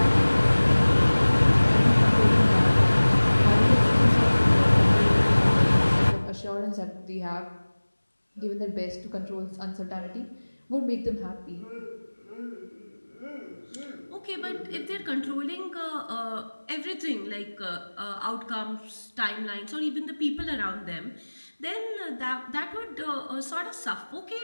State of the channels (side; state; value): both; inverted; correlation -1.00